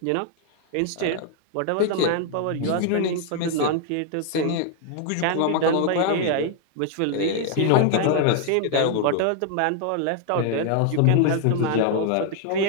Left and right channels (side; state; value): both; different; correlation 0.00